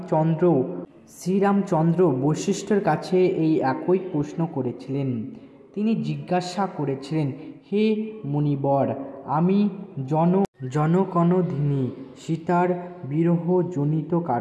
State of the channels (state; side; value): identical; both; correlation 1.00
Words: শ্রীরামচন্দ্র বশিষ্ঠের কাছে এই একই প্রশ্ন করেছিলেন। তিনি জিজ্ঞাসা করেছিলেন, হে মুনিবর, আমি জনকনদিনী সীতার বিরহজনিত